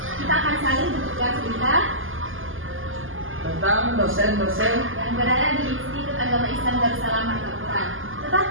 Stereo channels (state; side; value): late; left; 0.59 ms